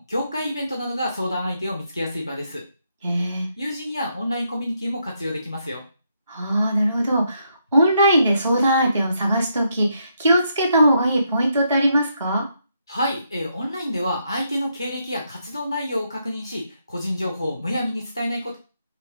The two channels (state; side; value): inverted; both; correlation -0.78